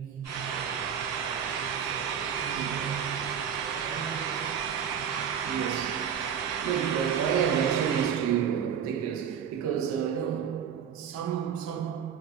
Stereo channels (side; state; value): left; quieter; 8.0 dB